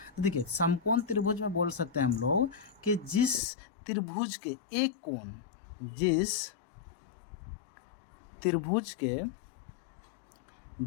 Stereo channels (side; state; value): right; drops out; at 3.4 s